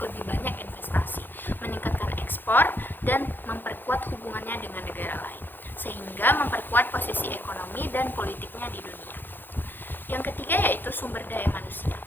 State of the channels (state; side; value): late; right; 0.094 ms